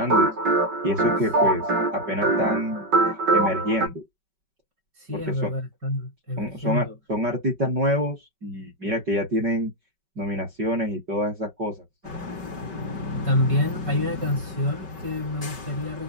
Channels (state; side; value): late; left; 5.3 ms